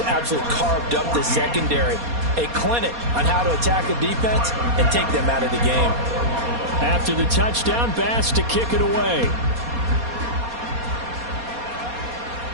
absolutely carved up the secondary. A clinic on how to attack a defense and take them out of the game. After the touchdown, Bass to kick it away.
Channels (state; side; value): late; left; 4.2 ms